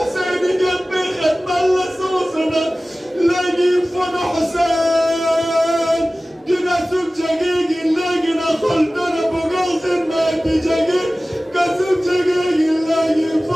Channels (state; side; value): normal; both; correlation 0.97